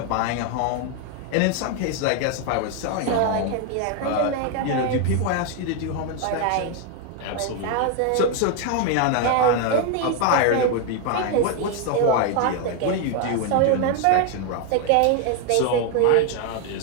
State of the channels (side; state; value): both; different; correlation 0.01